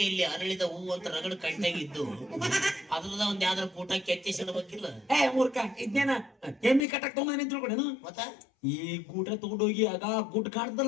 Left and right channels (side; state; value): right; drops out; at 6.9 s